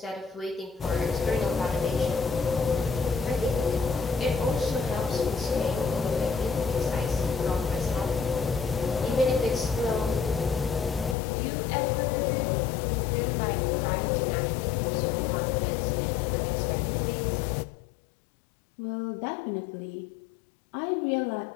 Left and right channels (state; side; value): drops out; right; at 11.2 s